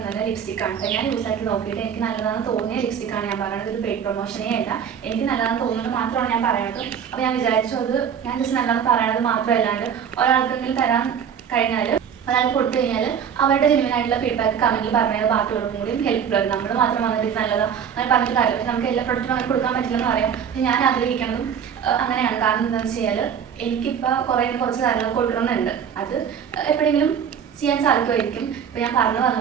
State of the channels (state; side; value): quieter; left; 7.9 dB